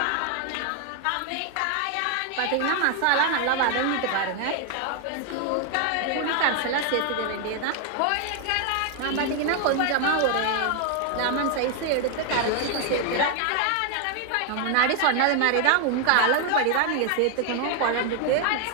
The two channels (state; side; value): different; both; correlation 0.00